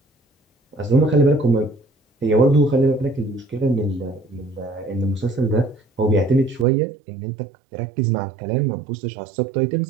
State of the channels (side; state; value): left; drops out; at 6.7 s